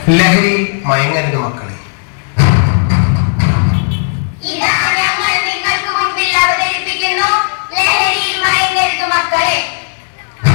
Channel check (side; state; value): right; silent; digital silence